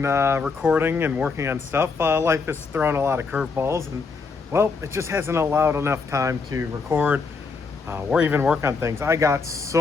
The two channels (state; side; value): quieter; right; 4.7 dB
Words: recording and working on stuff. Life has thrown a lot of curveballs, and well, it just hasn't allowed enough time to record or even work on things. I got